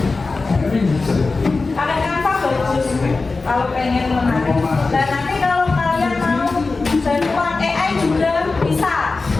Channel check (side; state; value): right; quieter; 3.8 dB